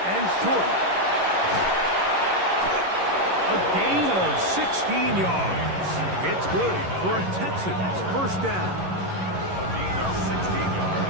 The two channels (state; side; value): late; left; 11 ms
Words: and short. A gain of 16 yards. It's good for a Texans 1st down. A gain of 16